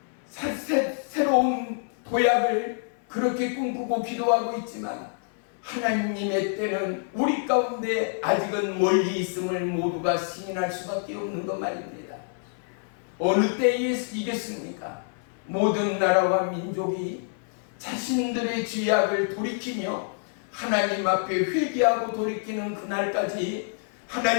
새로운 도약을 그렇게 꿈꾸고 기도하고 있지만 하나님의 때는 우리 가운데 아직은 멀리 있음을 모두가 시인할 수밖에 없는 것 말입니다. 어느 때이겠습니까? 모든 나라와 민족이 자신들의 죄악을 돌이키며 하나님 앞에 회개하고 돌이키는 그날까지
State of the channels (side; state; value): right; silent; 60 dB below the other